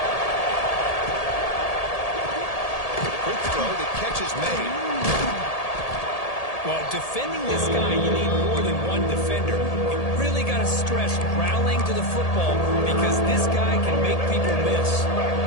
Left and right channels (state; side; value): late; right; 1.8 ms